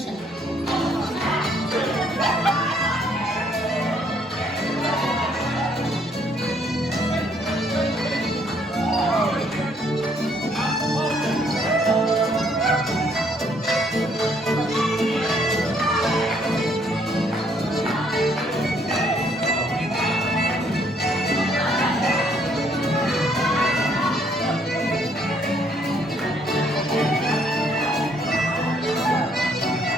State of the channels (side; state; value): both; normal; correlation 0.66